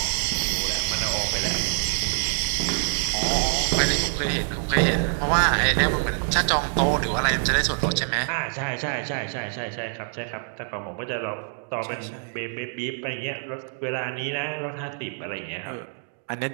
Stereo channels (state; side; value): silent; left; digital silence